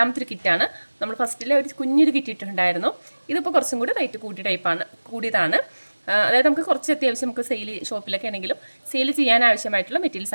ഒരു കിറ്റാണ്. നമ്മൾ ഫസ്റ്റിലെ ഒരു കുഞ്ഞൊരു കിറ്റ് ഇട്ടിട്ടുണ്ടായിരുന്നു. ഇതിപ്പോൾ കുറച്ചും കൂടി റേറ്റ് കൂടിയതാണ്. അതായത് നമുക്ക് കുറച്ച് അത്യാവശ്യം നമുക്ക് ഷോപ്പിലൊക്കെ ആണെങ്കിലും സെയിൽ ചെയ്യാൻ ആവശ്യമായിട്ടുള്ള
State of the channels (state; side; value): inverted; both; correlation -1.00